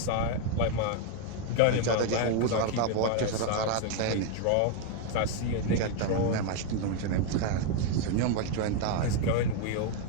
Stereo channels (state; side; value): different; both; correlation 0.01